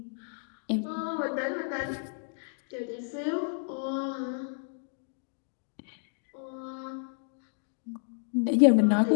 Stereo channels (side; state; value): right; silent; digital silence